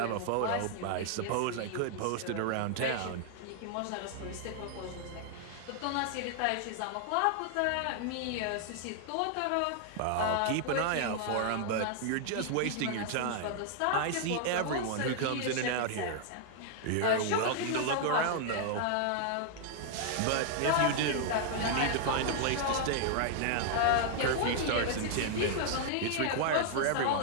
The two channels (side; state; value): both; different; correlation 0.00